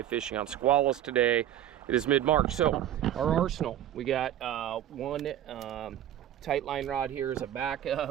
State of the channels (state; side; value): quieter; left; 11.6 dB